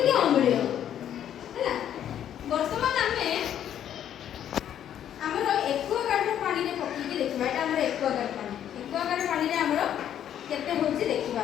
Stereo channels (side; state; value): right; quieter; 10.2 dB